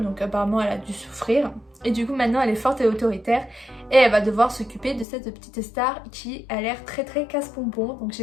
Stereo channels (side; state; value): right; drops out; at 5.1 s